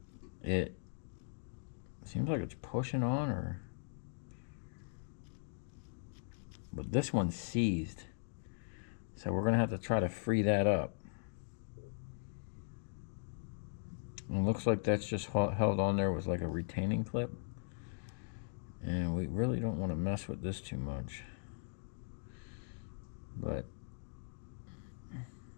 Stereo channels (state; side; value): silent; right; digital silence